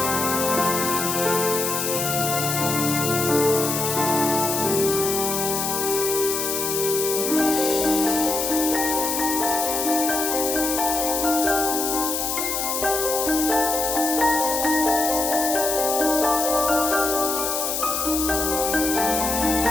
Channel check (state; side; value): noise; left; hiss, 1 dB below the sound